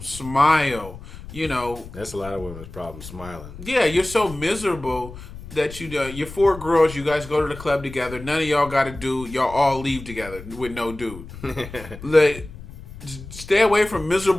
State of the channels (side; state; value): left; noise; rumble, 14 dB below the sound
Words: smile. That's a lot of women's problem, smiling. Yeah, you're so miserable that you're 4 girls. You guys go to the club together. None of y'all got a dude. Y'all all leave together with no dude. Like, stay away from